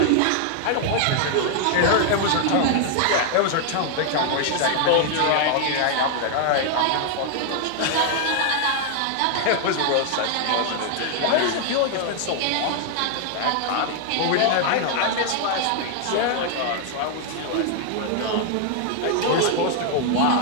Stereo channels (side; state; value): both; different; correlation 0.00